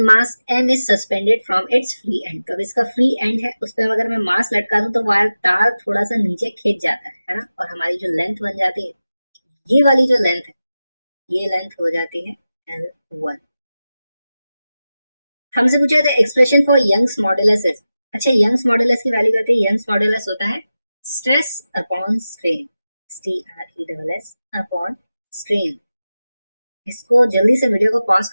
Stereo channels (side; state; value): both; inverted; correlation -0.94